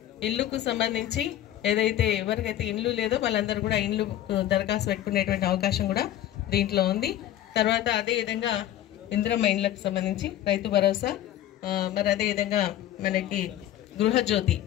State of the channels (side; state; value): right; quieter; 12.4 dB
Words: ఇల్లుకు సంబంధించి ఏదైతే ఎవరికైతే ఇండ్లు లేదో వాళ్ళందరూ కూడా ఇండ్లు దరఖాస్తు పెట్టుకునేటువంటి అవకాశం కూడా దీంట్లో ఉంది. తర్వాత అదేవిధంగా ఇందిరమ్మ ఇండ్లకు సంబంధించి రైతు భరోసా, మరి అదేవిధంగా మనకి